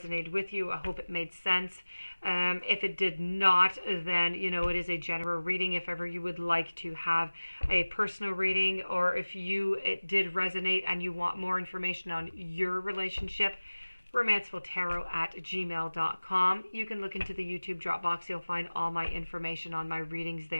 with you. I hope it made sense. If it did not, then, it is a general reading. If ever you would like to have a personal reading, or if it did resonate and you want more information on your relationship, romancefulltarot@gmail.com. You can look into the YouTube drop box. You'll find all my information on my readings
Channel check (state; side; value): inverted; both; correlation -1.00